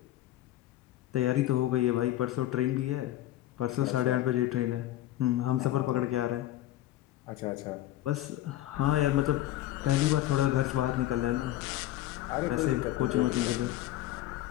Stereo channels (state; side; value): quieter; right; 14.4 dB